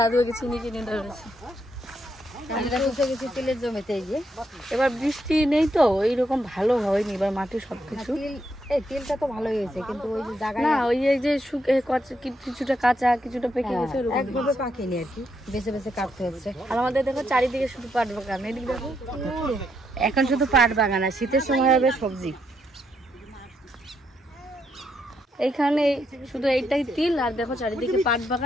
আগে চিনিকে নিয়ে দৌড়াচ্ছে। তেলের জমিতে এবার বৃষ্টি নেই তো এইরকম ভালো হয়নি এবার মাটি সবকিছু। তেলটা তো ভালোই হয়েছে, কিন্তু ওই যে জায়গা না ওই যে কিছুটা কাঁচা কিছুটা পেকে গেছে, একভাবে পাকেনি আর কি, বেছে বেছে কাটতে হচ্ছে। আর আমাদের দেখো চারিদিকে শুধু পাট বাগান। এদিকে দেখো এখন শুধু পাট বাগান, আর শীতের সময় হবে সবজি। এইখানে শুধু এইটাই তিল, আর দেখো চারিদিকে পাট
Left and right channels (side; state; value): both; normal; correlation 0.78